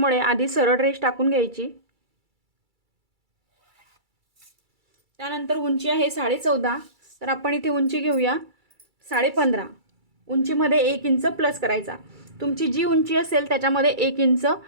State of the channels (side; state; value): left; late; 2.3 ms